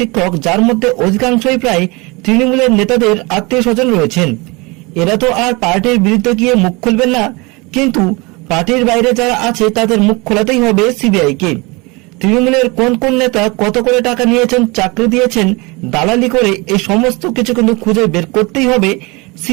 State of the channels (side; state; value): left; quieter; 26.1 dB